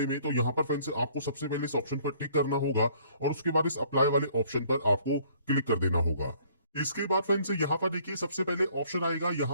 में। तो यहाँ पर फ्रेंड्स आपको सबसे पहले इस ऑप्शन पर टिक करना होगा और उसके बाद इस अप्लाई वाले ऑप्शन पर आपको क्लिक कर देना होगा। इसके बाद फ्रेंड्स यहाँ पर देखिए सबसे पहले ऑप्शन आएगा,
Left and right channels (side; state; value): both; inverted; correlation -0.60